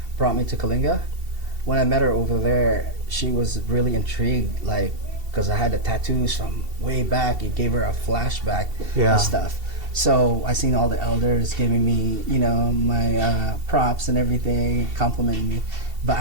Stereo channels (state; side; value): late; left; 2.7 ms